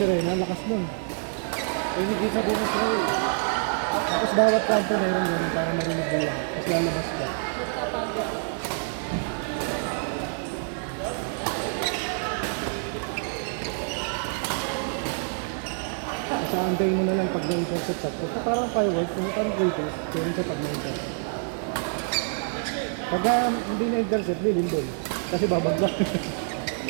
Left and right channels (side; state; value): left; silent; 60 dB below the other